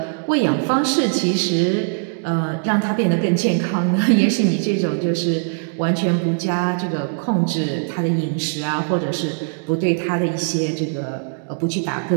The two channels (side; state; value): left; silent; digital silence